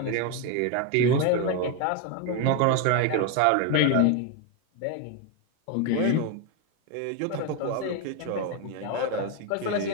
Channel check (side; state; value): both; different; correlation 0.02